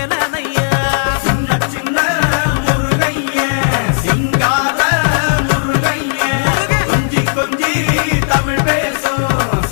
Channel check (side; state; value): right; silent; digital silence